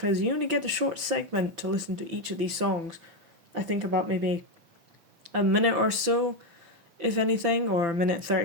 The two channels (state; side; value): late; left; 5.9 ms